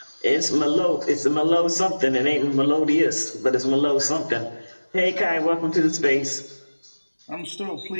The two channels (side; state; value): both; inverted; correlation -1.00